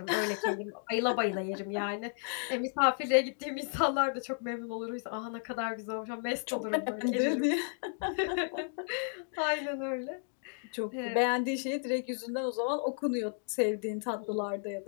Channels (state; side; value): silent; right; 56 dB below the other